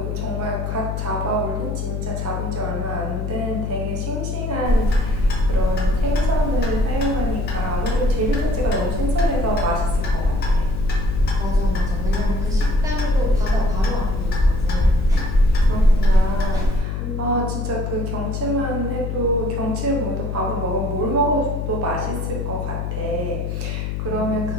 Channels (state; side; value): noise; left; hum, 3 dB below the sound